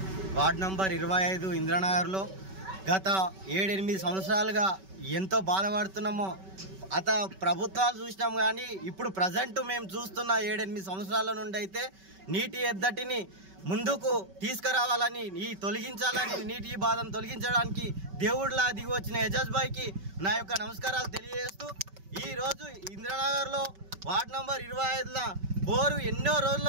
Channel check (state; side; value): late; left; 5.2 ms